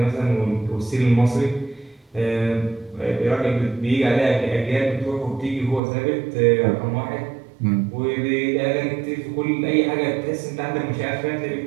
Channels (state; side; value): drops out; left; at 5.8 s